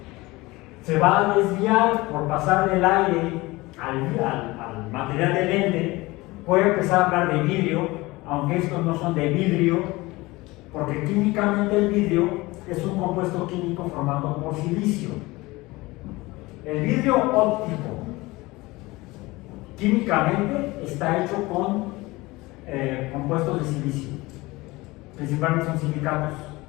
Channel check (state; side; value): quieter; right; 21.3 dB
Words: se va a desviar por pasar del aire al material del lente. Voy a empezar a hablar de vidrio, aunque estos no son de vidrio, porque químicamente el vidrio es un compuesto químico formado por silicio. El vidrio óptico químicamente está hecho con compuestos de silicio, principalmente son silicatos.